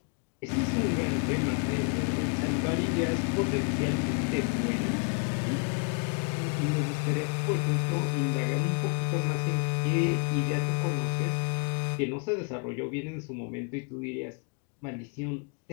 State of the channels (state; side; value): quieter; right; 36.7 dB